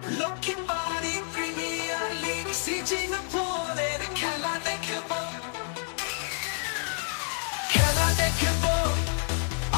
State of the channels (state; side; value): silent; right; 59 dB below the other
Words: লক্ষ্মী বাড়ি প্রিমিয়ার লিগ সিঙ্গাপুরের খেলা দেখব